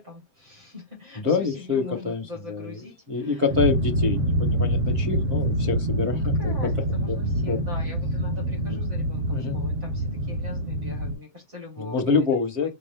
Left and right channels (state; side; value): late; left; 7.6 ms